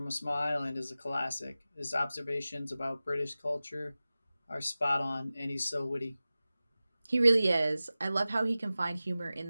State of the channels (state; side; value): inverted; both; correlation -0.96